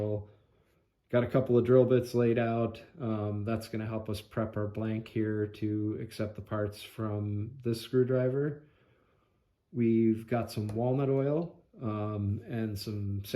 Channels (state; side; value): identical; both; correlation 1.00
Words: Got a couple of drill bits laid out. That's going to help us prep our blank here to accept the parts from this screwdriver. We've got some walnut oil and some